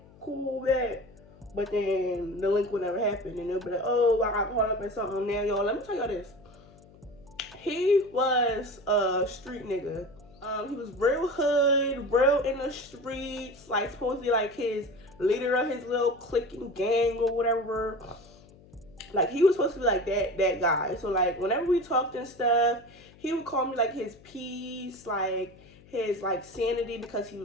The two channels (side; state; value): left; noise; hum, 24 dB below the sound